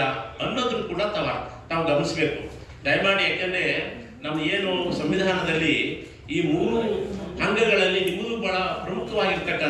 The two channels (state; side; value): identical; both; correlation 1.00